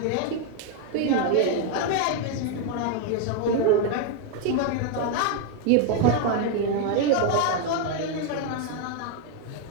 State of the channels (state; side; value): different; both; correlation 0.01